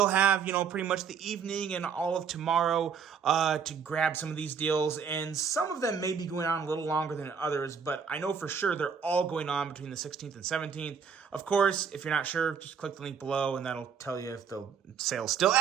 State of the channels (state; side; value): quieter; left; 6.7 dB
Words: have, pretty much the evening and all of tomorrow to grab some of these deals, and some of them may be going on a little longer than others, but I know for sure they're all going on between the 16th and 17th. Of course, if you're not sure, just click the link below, and that'll tell you if the sale's still